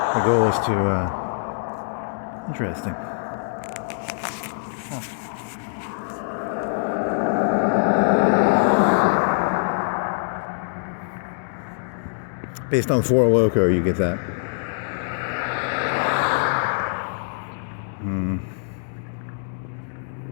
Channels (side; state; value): right; silent; digital silence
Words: The goal is to interesting. Based on Four Loko, you get that.